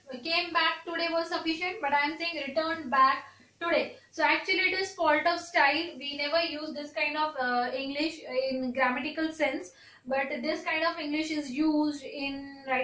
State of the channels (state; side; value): identical; both; correlation 1.00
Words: came back today was sufficient, but I am saying returned back today. So actually it is fault of style. We never use this kind of English in grammatical sense, but this kind of English is used in